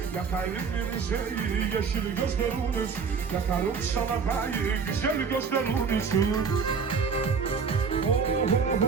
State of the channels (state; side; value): quieter; left; 5.7 dB